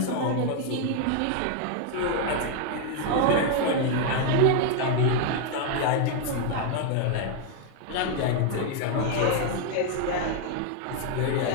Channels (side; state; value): both; different; correlation 0.00